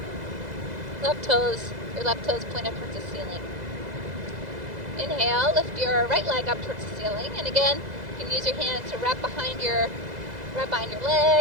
Your left toes point up towards the ceiling. Inhale, lift your right leg up towards the ceiling, and again, you can use your hands to wrap behind your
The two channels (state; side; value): late; left; 2.0 ms